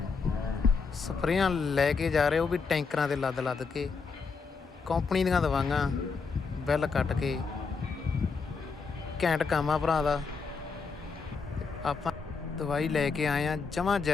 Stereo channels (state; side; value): quieter; right; 5.0 dB